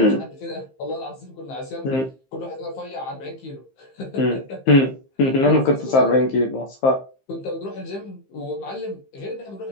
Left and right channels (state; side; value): late; right; 15 ms